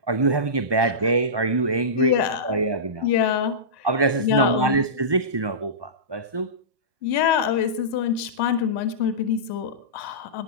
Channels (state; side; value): late; left; 1.2 ms